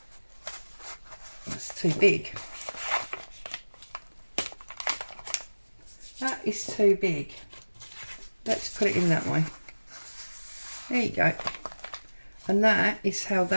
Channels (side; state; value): both; inverted; correlation -1.00